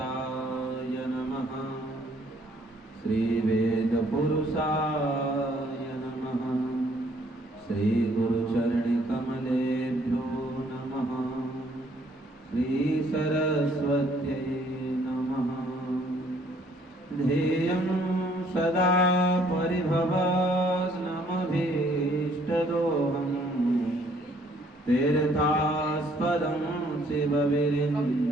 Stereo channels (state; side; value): normal; both; correlation 0.63